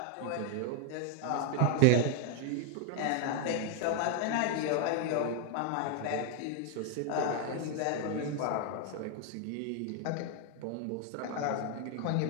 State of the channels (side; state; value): both; different; correlation 0.00